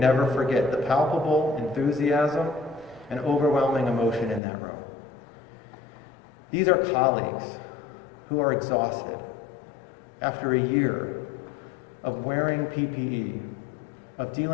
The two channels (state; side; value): drops out; right; at 4.4 s